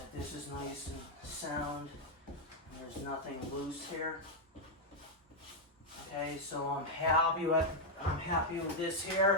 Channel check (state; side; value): normal; both; correlation -0.01